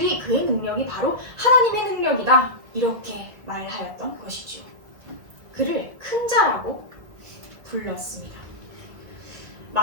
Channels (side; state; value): left; late; 2.1 ms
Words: 그의 능력이 바로 하나님의 능력이다 이렇게 말하였던 것이죠. 그를 큰 자라고 불렀습니다.